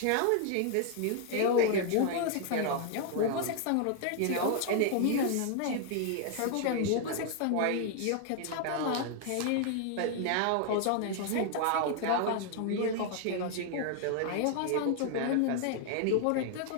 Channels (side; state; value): both; different; correlation 0.00